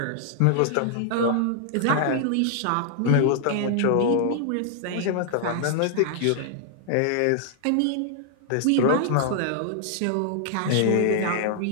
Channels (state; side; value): different; both; correlation 0.00